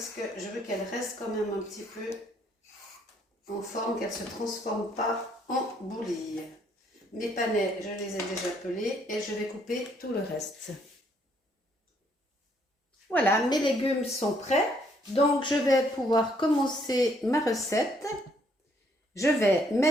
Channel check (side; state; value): both; normal; correlation 0.68